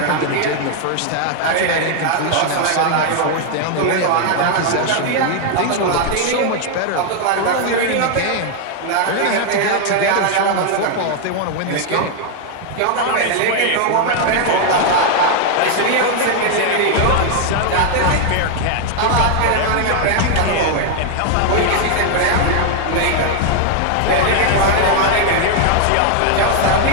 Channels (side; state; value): both; different; correlation 0.00